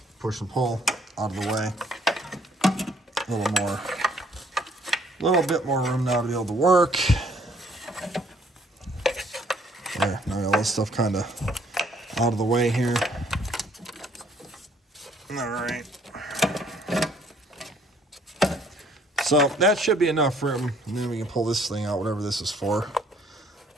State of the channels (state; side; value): normal; both; correlation 0.63